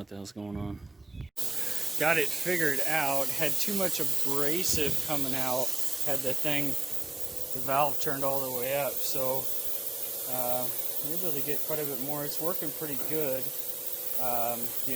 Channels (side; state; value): left; quieter; 3.1 dB